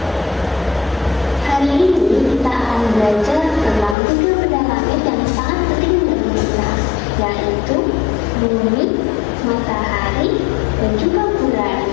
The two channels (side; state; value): right; drops out; at 4.0 s